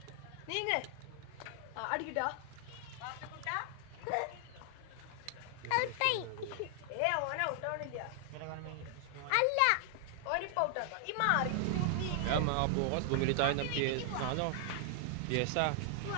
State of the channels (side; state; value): both; different; correlation 0.00